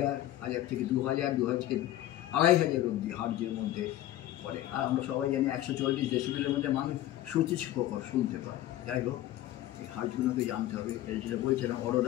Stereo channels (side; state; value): right; quieter; 13.9 dB